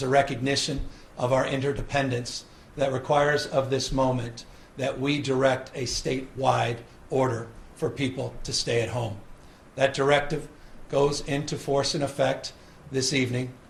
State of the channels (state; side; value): identical; both; correlation 1.00